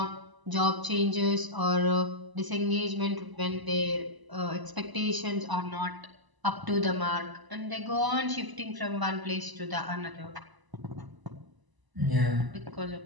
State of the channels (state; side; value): late; left; 1.0 ms